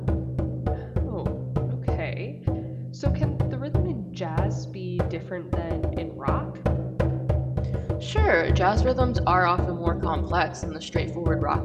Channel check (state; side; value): identical; both; correlation 1.00